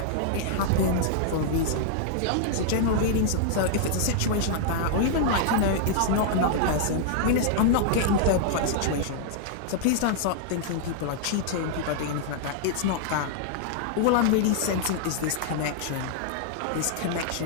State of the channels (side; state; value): both; different; correlation -0.01